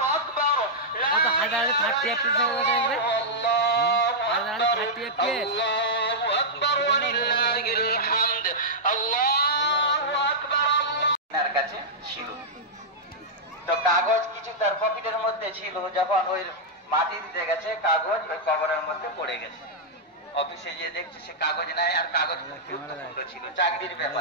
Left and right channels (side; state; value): both; normal; correlation -0.08